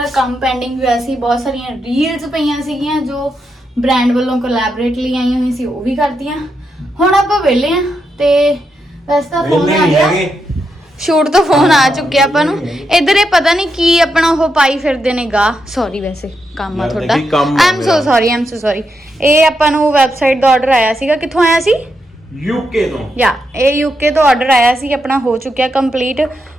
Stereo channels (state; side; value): normal; both; correlation 0.83